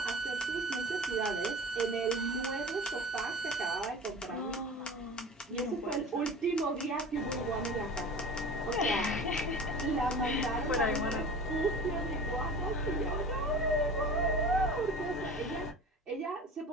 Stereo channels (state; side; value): normal; both; correlation 0.37